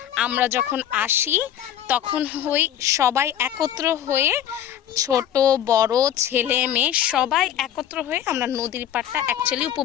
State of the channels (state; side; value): quieter; right; 10.9 dB